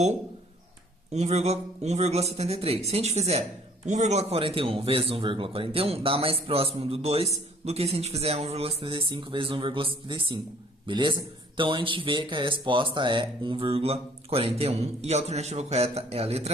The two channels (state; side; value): normal; both; correlation 0.57